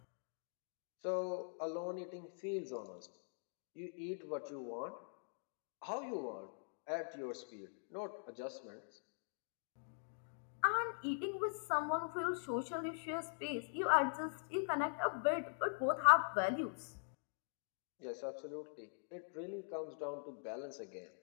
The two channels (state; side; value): silent; right; digital silence